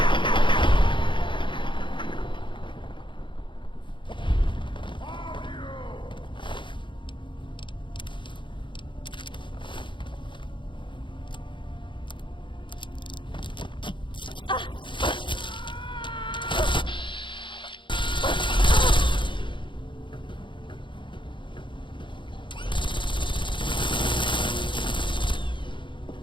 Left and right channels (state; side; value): late; right; 0.23 ms